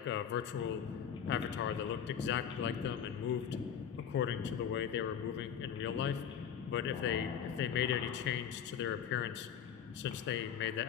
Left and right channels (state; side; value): quieter; right; 8.3 dB